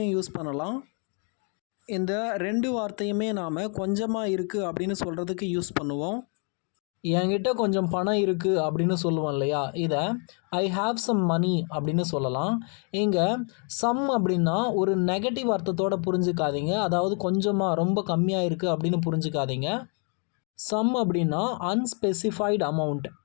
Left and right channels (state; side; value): quieter; right; 39.4 dB